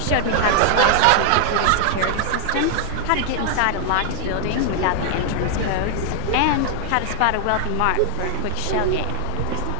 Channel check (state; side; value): different; both; correlation 0.00